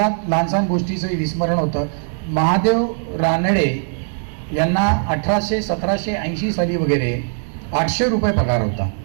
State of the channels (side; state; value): left; silent; digital silence